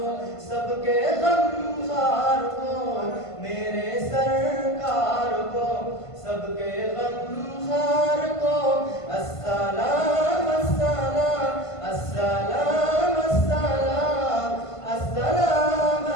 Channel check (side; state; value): right; late; 1.5 ms